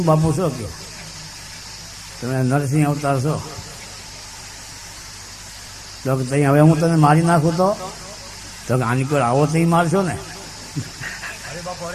બાપુ છો કે તમે નરસિંહ અવતાર છો? તો ત્યાં હવે હું તને મારી નાખું તો આની કોઈ આવો તો મારશો ને?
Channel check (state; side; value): identical; both; correlation 1.00